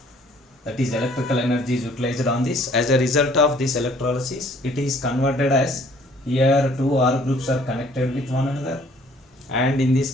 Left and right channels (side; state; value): both; normal; correlation 0.58